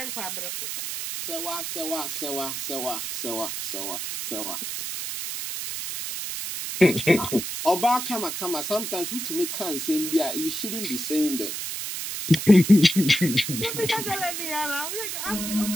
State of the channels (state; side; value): noise; right; hiss, 5 dB below the sound